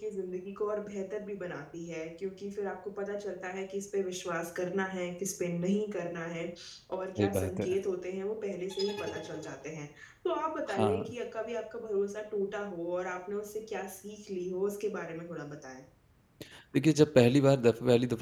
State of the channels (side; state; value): both; identical; correlation 1.00